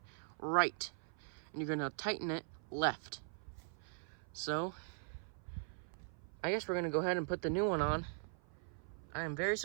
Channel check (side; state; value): left; silent; 50 dB below the other